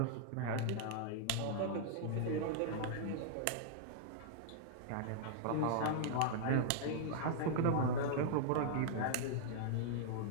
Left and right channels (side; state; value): both; different; correlation -0.01